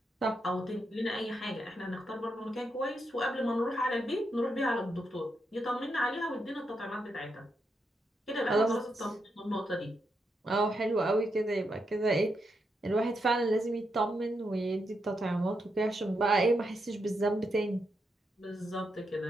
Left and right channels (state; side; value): normal; both; correlation 0.82